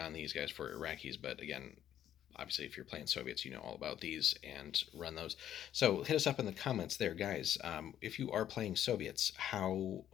these guys for Iraqis, but again, obviously, if you're playing Soviets, you know all about these and run those. So hit us up in the comments there, guys. If you are playing Soviets, how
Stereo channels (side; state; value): right; quieter; 10.8 dB